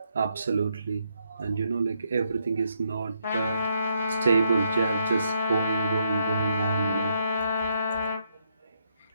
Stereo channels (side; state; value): both; inverted; correlation -0.76